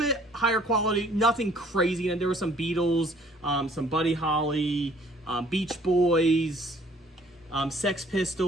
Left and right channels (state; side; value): normal; both; correlation 0.58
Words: higher quality, nothing crazy. And there were some Beatles, some Buddy Holly, Beach Boys, Sex